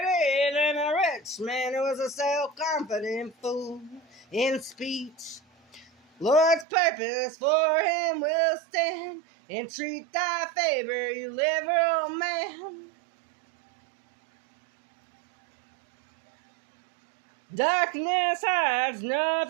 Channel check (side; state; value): left; drops out; at 6.7 s